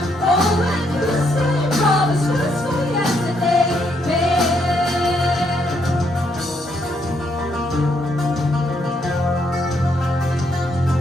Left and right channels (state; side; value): normal; both; correlation 0.74